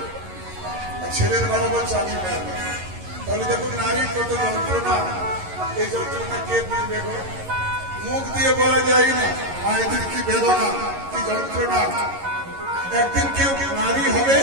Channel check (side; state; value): left; late; 11 ms